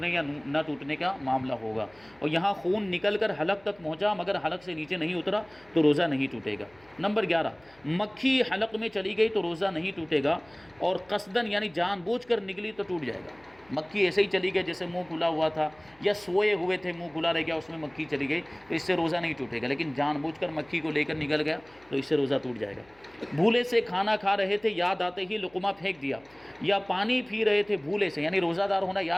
یا نہ ٹوٹنے کا معاملہ ہوگا، اور یہاں خون نکل کر حلق تک پہنچا مگر حلق سے نیچے نہیں اترا تو روزہ نہیں ٹوٹے گا۔ نمبر 11، مکھی حلق میں چلی گئی تو روزہ نہیں ٹوٹے گا، اور قصدن یعنی جان بوجھ کر نکلی تو ٹوٹ جائے گا۔ مکھی ایسے ہی چلی گئی جیسے منہ کھلا ہوا تھا یا سوئے ہوئے تھے منہ کھلا رہ گیا اس میں مکھی چلی گئی تو اس سے روزہ نہیں ٹوٹے گا، لیکن جان بوجھ کر مکھی کو لے کر نکل گیا تو اس سے روزہ ٹوٹ جائے گا۔ بھولے سے کھانا کھا رہے تھے، یاد آتے ہی لقمہ پھینک دیا، یا پانی پی رہے تھے بھولے سے یعنی روزہ دار ہونا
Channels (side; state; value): left; noise; hum, 30 dB below the sound